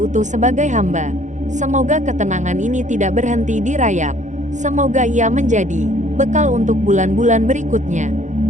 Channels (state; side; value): late; left; 0.35 ms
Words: utuh sebagai hamba. Semoga ketenangan ini tidak berhenti di Rajab. Semoga ia menjadi bekal untuk bulan-bulan berikutnya.